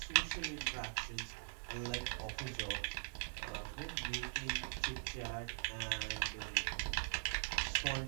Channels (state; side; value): silent; left; digital silence